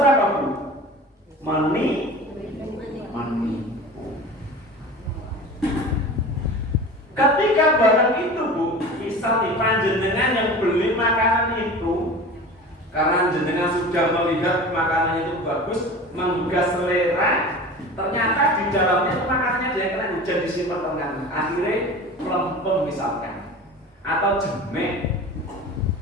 apa, Bu? Menipu. Ketika barang itu, Bu, misal di panjenengan yang beli makanan itu, karena jenengan sudah melihat makanannya itu bagus, menggugah selera, ternyata di dalamnya itu makanannya dia kena hujan disimpan tengah, akhirnya melempem misalkan, atau jemek.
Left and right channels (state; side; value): normal; both; correlation 0.36